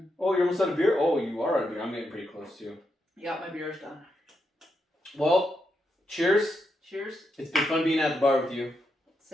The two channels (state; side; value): normal; both; correlation 0.83